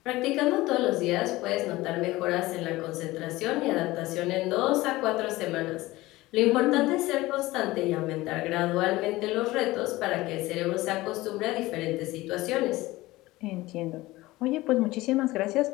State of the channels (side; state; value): right; quieter; 18.9 dB